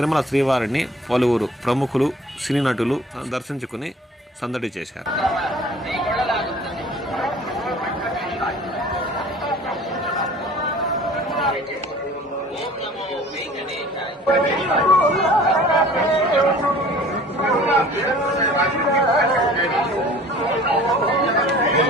శ్రీవారిని పలువురు ప్రముఖులు, సినీ నటులు దర్శించుకుని సందడి చేశారు.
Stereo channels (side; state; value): both; normal; correlation 0.47